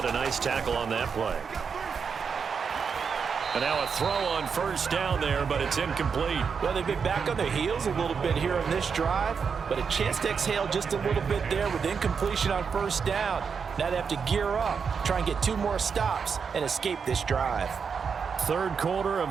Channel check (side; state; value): left; quieter; 6.1 dB